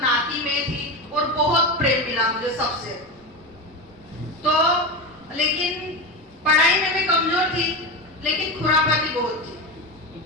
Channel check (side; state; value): both; normal; correlation 0.20